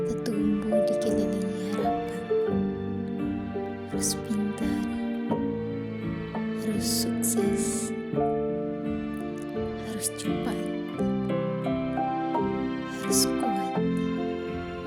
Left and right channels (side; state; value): both; identical; correlation 1.00